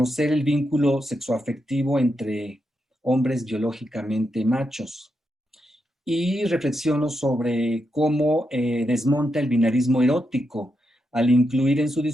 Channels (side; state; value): both; normal; correlation 0.84